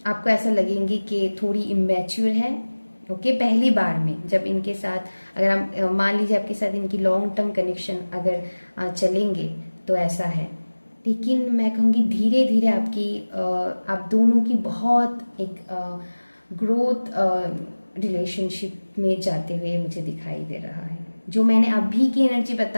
ऐसा लगेंगी कि थोड़ी इमेच्योर है। ओके, पहली बार में जब इनके साथ अगर हम मान लीजिए आपके साथ इनकी लॉन्ग टर्म कनेक्शन अगर चलेंगे तो ऐसा है। लेकिन मैं कहूँगी धीरे धीरे आप दोनों की बहुत एक ग्रोथ रिलेशनशिप में जाते हुए मुझे दिखाई दे रहा है। जो मैंने अभी की एनर्जी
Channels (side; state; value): both; inverted; correlation -1.00